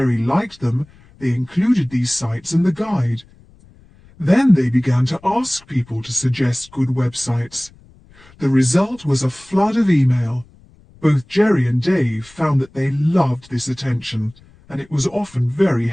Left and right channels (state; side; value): noise; left; rumble, 27 dB below the sound